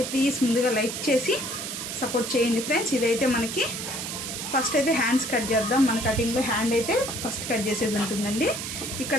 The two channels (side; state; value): right; noise; hiss, 6 dB below the sound